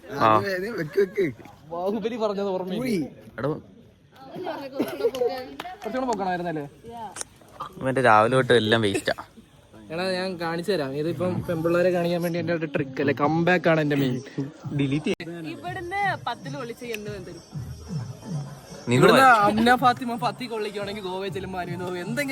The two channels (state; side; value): identical; both; correlation 1.00